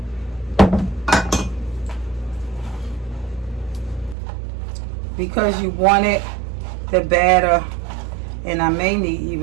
Because you want it, the batter, and I may need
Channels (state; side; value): drops out; left; at 4.2 s